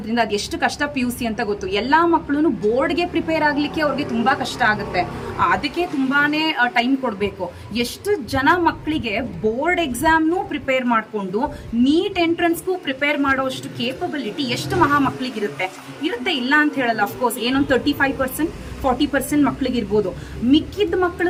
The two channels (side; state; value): both; identical; correlation 1.00